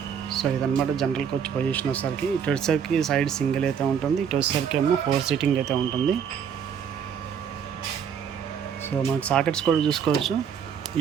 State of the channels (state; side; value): quieter; left; 7.7 dB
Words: సో ఇదనమాట జనరల్ కోచ్ పొజిషన్ వచ్చేసరికి. ఇటు వచ్చేసరికి సైడ్ సింగిల్ అయితే ఉంటుంది, ఇటు వచ్చేసరికి ఏమో 4 సీటింగ్ అయితే ఉంటుంది. సో మనకి సాకెట్స్ కూడా చూసుకోవచ్చు.